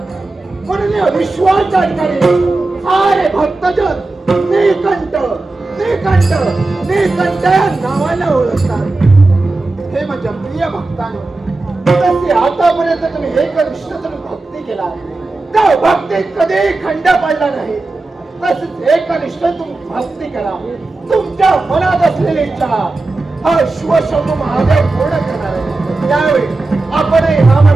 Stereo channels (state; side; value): quieter; left; 3.2 dB